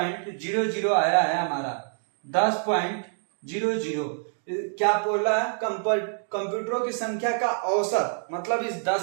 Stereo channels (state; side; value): silent; left; digital silence